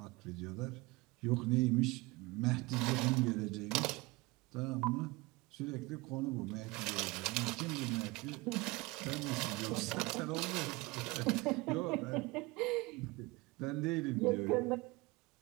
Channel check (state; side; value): quieter; left; 23.4 dB